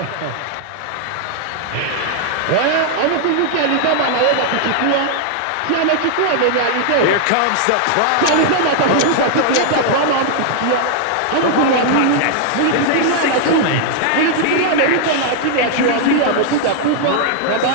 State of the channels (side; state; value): both; different; correlation -0.01